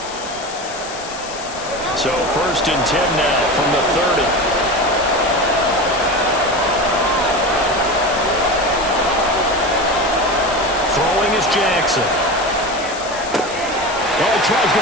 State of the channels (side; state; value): left; noise; hiss, 13 dB below the sound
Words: So 1st and 10 now from the 30. Throwing is Jackson. Oh, he tries